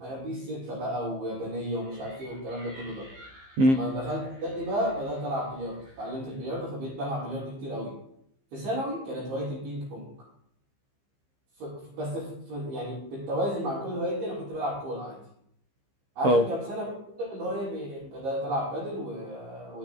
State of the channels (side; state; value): left; late; 15 ms